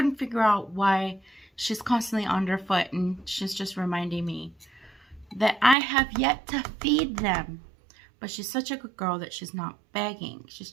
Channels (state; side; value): drops out; left; at 5.8 s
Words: figure out why she's constantly underfoot, and she's just reminding me that I have yet to feed them. But she's such a good girl that she's not begging. She's